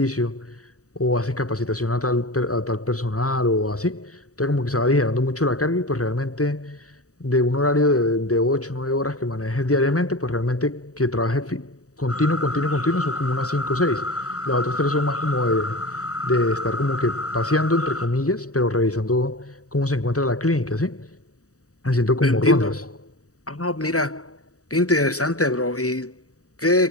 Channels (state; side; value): late; right; 0.66 ms